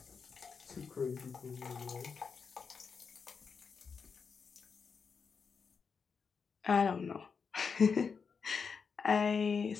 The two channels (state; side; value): quieter; right; 5.7 dB